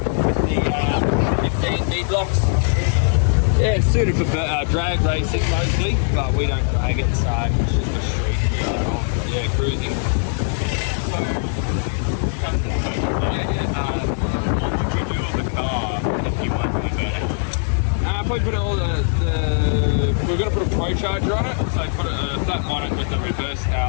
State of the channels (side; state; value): right; silent; digital silence